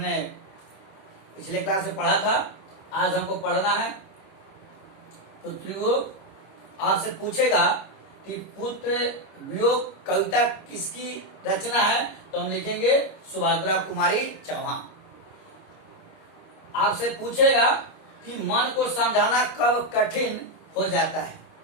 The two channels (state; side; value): late; right; 25 ms